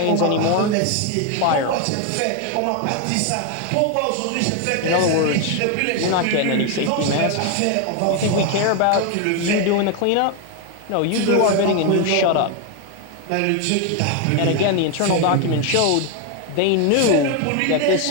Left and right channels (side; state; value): both; different; correlation 0.01